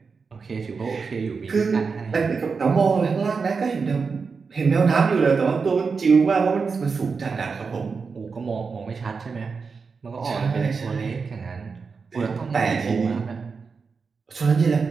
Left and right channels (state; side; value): quieter; left; 5.1 dB